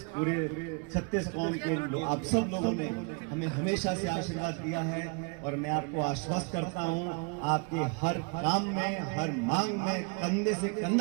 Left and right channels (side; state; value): left; quieter; 33.8 dB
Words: पूरे छत्तीस कौम के आप सब लोगों ने हमें हमेशा से आशीर्वाद दिया है और मैं आपको आश्वस्त करता हूं, आपके हर काम में, हर मांग में कंधे से